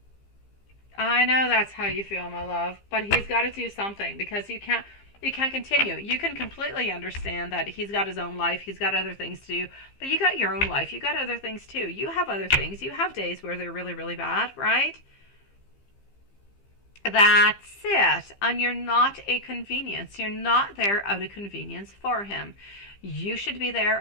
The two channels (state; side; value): late; right; 15 ms